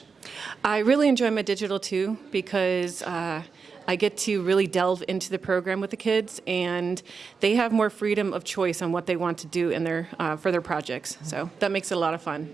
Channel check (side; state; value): left; quieter; 5.2 dB